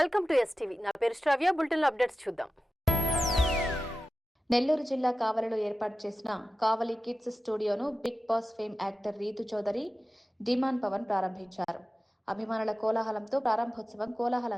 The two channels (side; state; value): both; normal; correlation 0.94